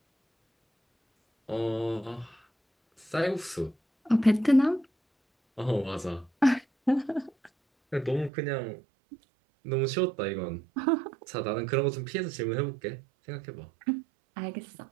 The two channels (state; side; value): drops out; left; at 8.3 s